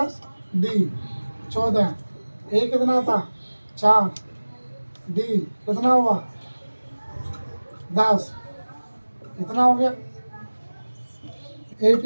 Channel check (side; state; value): both; inverted; correlation -1.00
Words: D 14, A कितना था 4, D कितना हुआ 10, कितना हो गया,